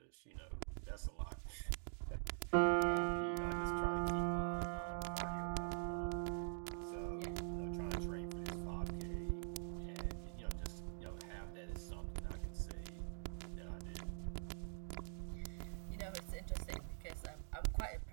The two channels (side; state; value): left; silent; digital silence